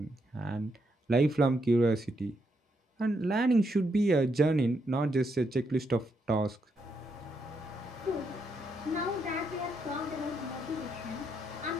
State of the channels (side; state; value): both; normal; correlation 0.79